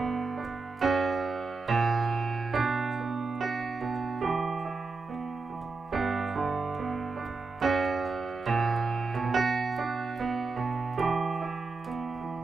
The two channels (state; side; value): quieter; left; 4.0 dB